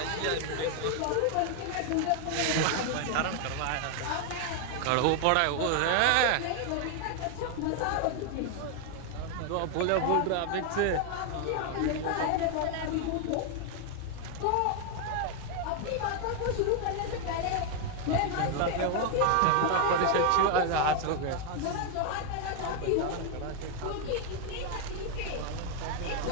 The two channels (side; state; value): both; different; correlation 0.01